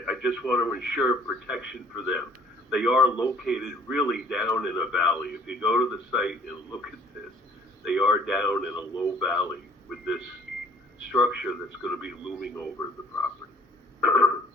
just want to ensure protection for them. They are located really down in a valley. If you go to the site and look at this, they are down in a low valley with this structure that's going to be looming over the property.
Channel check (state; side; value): normal; both; correlation 0.56